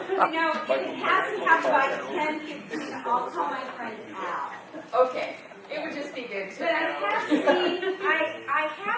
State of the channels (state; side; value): identical; both; correlation 1.00